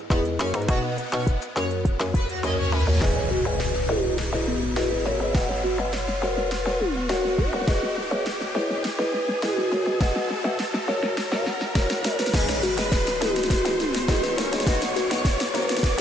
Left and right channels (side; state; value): both; normal; correlation 0.77